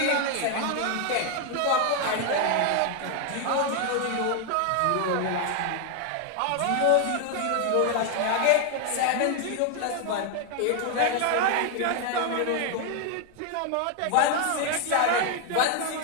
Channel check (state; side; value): different; both; correlation 0.01